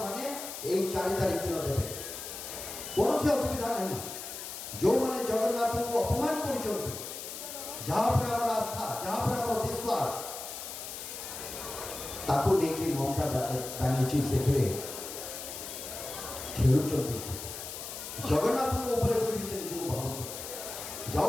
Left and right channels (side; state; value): left; noise; hiss, 9 dB below the sound